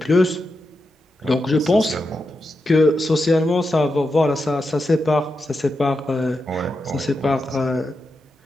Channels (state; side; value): normal; both; correlation 0.88